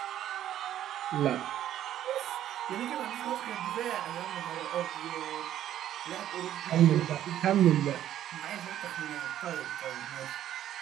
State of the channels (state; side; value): quieter; left; 11.7 dB